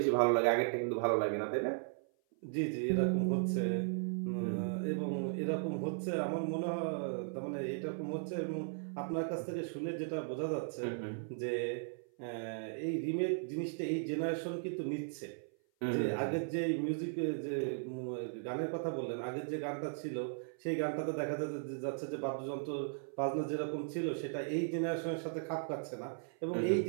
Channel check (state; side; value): silent; left; 53 dB below the other